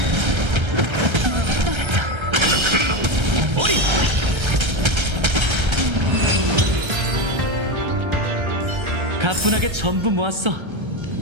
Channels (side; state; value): left; late; 1.3 ms